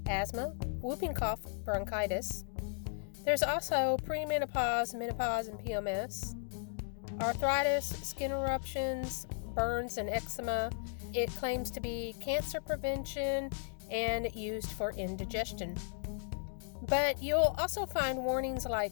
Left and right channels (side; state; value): right; silent; digital silence